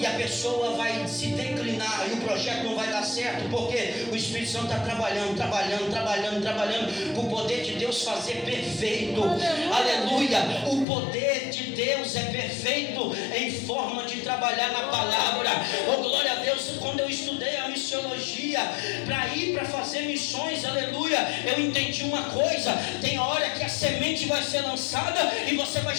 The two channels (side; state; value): right; drops out; at 10.9 s